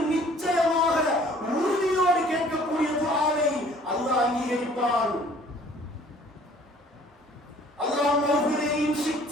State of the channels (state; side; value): normal; both; correlation 0.54